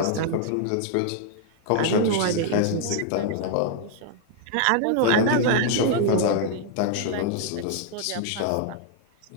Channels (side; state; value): both; different; correlation 0.00